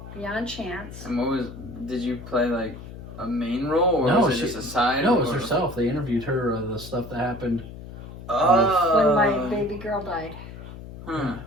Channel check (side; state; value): left; noise; hum, 13 dB below the sound